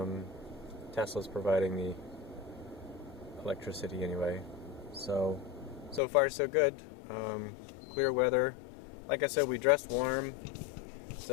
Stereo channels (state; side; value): drops out; right; at 6.0 s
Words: Tesla's providing the electricity anyway, so far so good. Clear weather. Like I said, we dressed warm,